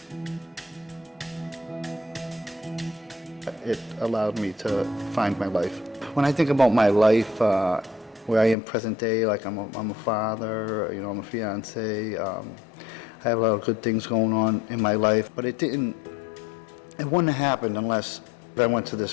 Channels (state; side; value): drops out; right; at 8.6 s